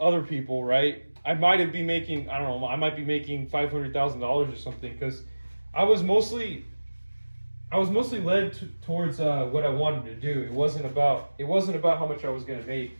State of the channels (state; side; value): inverted; both; correlation -1.00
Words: people, right? I might have been making, I don't know, I might be making $500,000 or something because I was mostly led towards what I wanted to do. It wasn't about how much I was going to make.